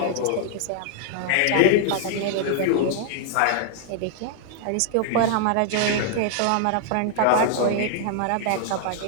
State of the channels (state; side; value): different; both; correlation -0.01